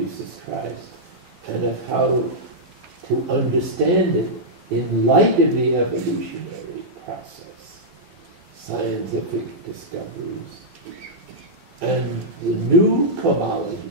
Christ and of how to understand it in light of the evolutionary process, scientific discoveries, and the new cosmology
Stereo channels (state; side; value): late; left; 12 ms